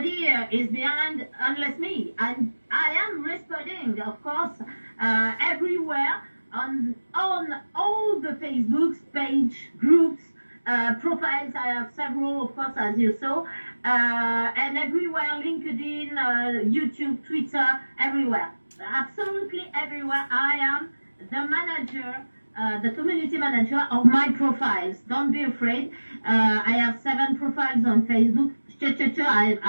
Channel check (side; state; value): both; inverted; correlation -1.00